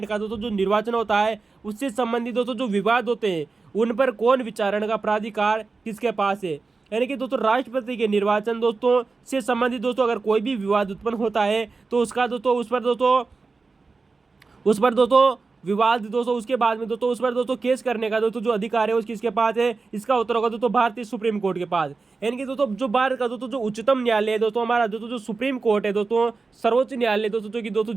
का दोस्तों जो निर्वाचन होता है, उससे संबंधित दोस्तों जो विवाद होते हैं उन पर कौन विचारण का प्राधिकार किसके पास है। यानी कि दोस्तों राष्ट्रपति के निर्वाचन दोस्तों से संबंधित दोस्तों अगर कोई भी विवाद उत्पन्न होता है तो उसका दोस्तों उस पर दोस्तों विवाद दोस्तों उसके बाद में दोस्तों उस पर दोस्तों केस करने का दोस्तों जो अधिकार है उसकी किसके पास है। इसका उत्तर होगा दोस्तों भारतीय सुप्रीम कोर्ट के पास। यानी कि दोस्तों जो भारत का दोस्तों जो उच्चतम न्यायालय है दोस्तों, हमारा दोस्तों जो सुप्रीम कोर्ट है दोस्तों, सर्वोच्च न्यायालय दोस्तों जो कि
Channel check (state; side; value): quieter; left; 4.2 dB